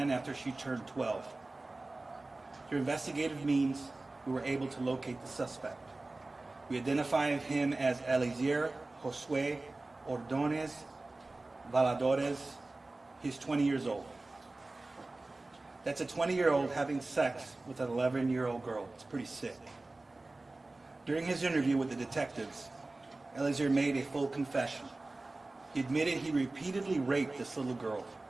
after she turned 12. Through investigative means, we were able to locate the suspect. We identified him as Eliezer Josue Ordonez Valadores. He's 20 years old. That's a 20-year-old having sex with an 11-year-old girl. It's pretty sick. During his interview with the detectives, Eliezer made a full confession. He admitted he repeatedly raped this little girl.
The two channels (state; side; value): quieter; left; 3.1 dB